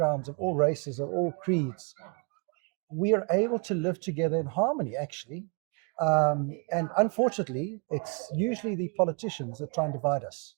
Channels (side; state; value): left; quieter; 36.6 dB